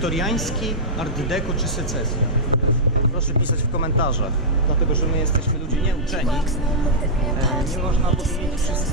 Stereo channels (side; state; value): both; normal; correlation -0.11